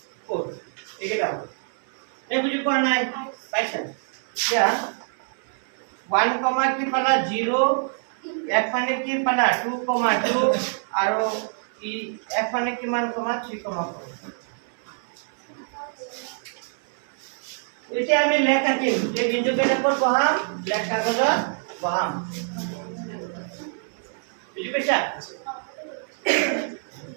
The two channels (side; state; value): left; silent; 61 dB below the other